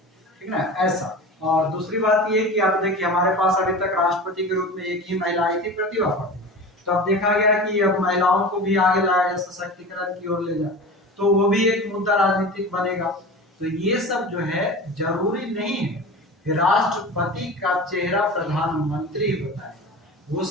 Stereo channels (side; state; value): both; normal; correlation 0.33